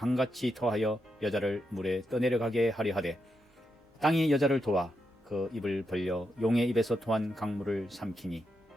토하여 여자를 물에 떠내려가게 하려 하되 땅이 여자를 도와 그 입을 벌려 용의 입에서 토한 강물을 삼키니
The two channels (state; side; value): normal; both; correlation 0.84